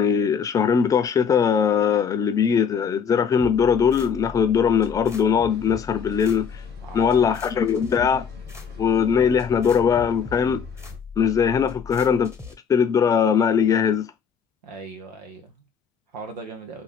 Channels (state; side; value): quieter; right; 6.8 dB